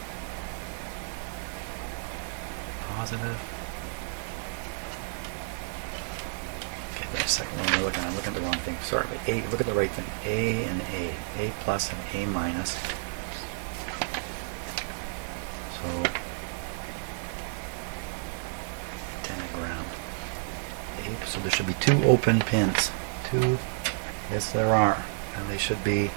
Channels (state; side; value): silent; left; 57 dB below the other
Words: positive. Okay, wait a second. What am I looking at? I'm looking at the wrong thing. Sorry, but A. Look at the right thing. A and A. A plus and A minus. So 10 ground. A. So there should be two open pins. Two. Yes, there are, and they should be